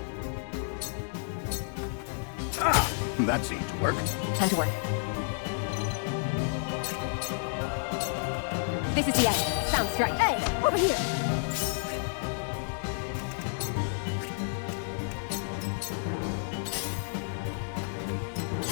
That seemed to work. Time to work. This is the end. Sound strike. Hey, over here.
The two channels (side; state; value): right; silent; digital silence